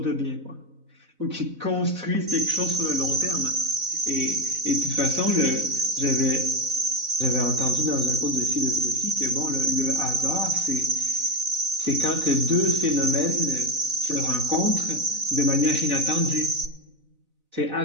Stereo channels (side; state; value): left; late; 4.0 ms